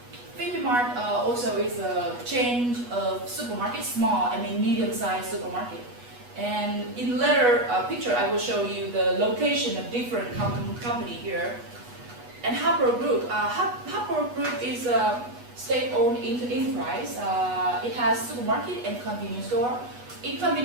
Phoebe Mart also is a chain of supermarket, small, medium-sized supermarket. And in later picture, I will show you the location of different company here. And Harper Group. Harper Group is a state-owned enterprise. It has supermarket and convenience store. In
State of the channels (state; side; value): late; left; 8.2 ms